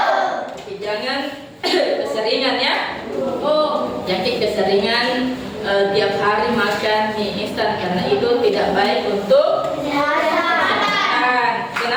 Jangan keseringan ya. Jadi keseringan tiap hari makan mie instan karena itu tidak baik untuk kesehatan.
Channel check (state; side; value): identical; both; correlation 1.00